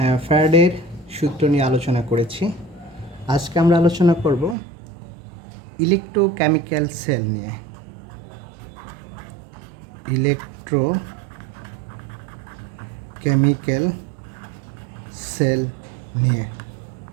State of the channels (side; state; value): left; drops out; at 4.5 s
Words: ফ্যারাডের সূত্র নিয়ে আলোচনা করেছি। আজকে আমরা আলোচনা করব ইলেকট্রোকেমিক্যাল সেল নিয়ে। ইলেকট্রোকেমিক্যাল সেল নিয়ে।